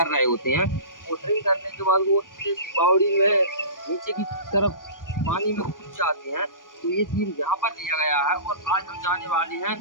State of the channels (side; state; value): right; late; 0.89 ms